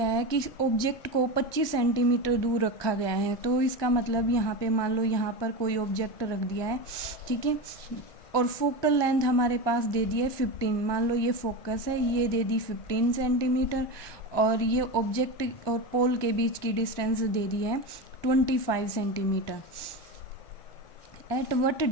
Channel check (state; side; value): late; right; 1.2 ms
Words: है कि ऑब्जेक्ट को 25 सेंटीमीटर दूर रखा गया है, तो इसका मतलब यहाँ पे मान लो यहाँ पर कोई ऑब्जेक्ट रख दिया है, ठीक है, और फोकल लेंथ हमारे पास दे दी है 15, मान लो ये फोकस है, ये दे दी 15 सेंटीमीटर, और ये ऑब्जेक्ट और पोल के बीच की डिस्टेंस दे दी है 25 centimetre. At what